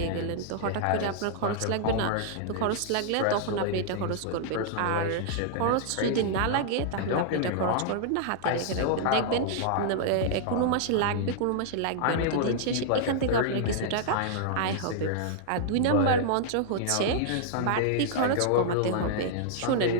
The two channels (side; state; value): both; different; correlation -0.01